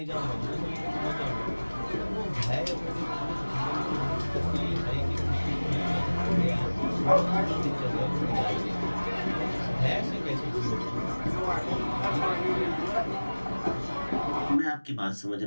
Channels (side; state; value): both; inverted; correlation -1.00